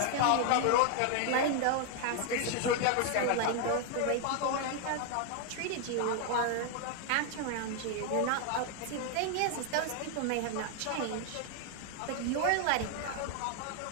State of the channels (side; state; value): both; different; correlation 0.00